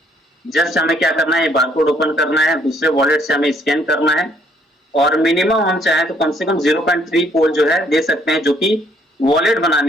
जस्ट हमें क्या करना है, बारकोड ओपन करना है, दूसरे वॉलेट से हमें स्कैन करना है और मिनिमम हम चाहें तो कम से कम 0.3 पोल जो है दे सकते हैं, जो कि वॉलेट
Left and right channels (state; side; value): normal; both; correlation 0.66